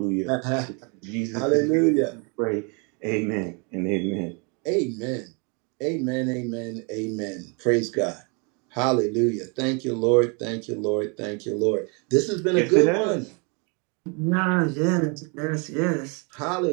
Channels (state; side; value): quieter; left; 34.3 dB